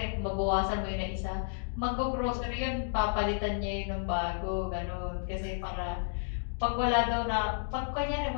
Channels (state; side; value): silent; right; digital silence